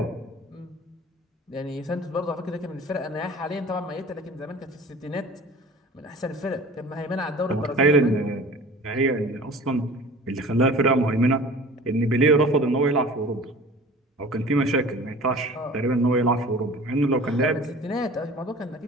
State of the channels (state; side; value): normal; both; correlation 0.43